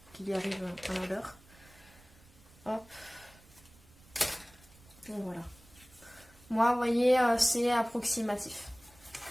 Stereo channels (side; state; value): right; noise; rumble, 25 dB below the sound